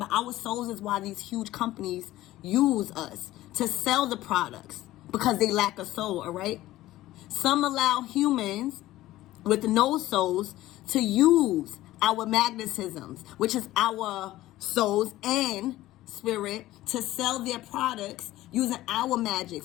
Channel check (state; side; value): quieter; right; 15.8 dB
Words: our souls is why these huge companies use us to sell the products, because they lack a soul, all right? Some allow humans with no souls to use our magnetisms, which is our souls and spirit, to sell their products using our magic